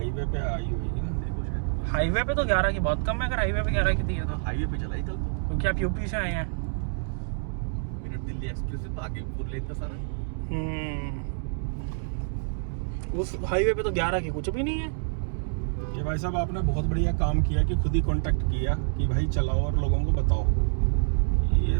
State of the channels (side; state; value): left; silent; digital silence